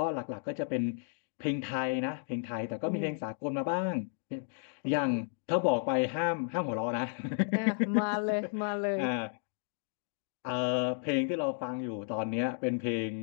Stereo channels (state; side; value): silent; right; digital silence